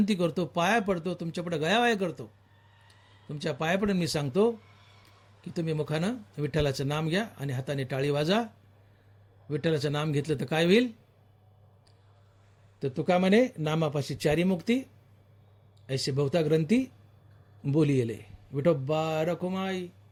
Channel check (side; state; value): both; identical; correlation 1.00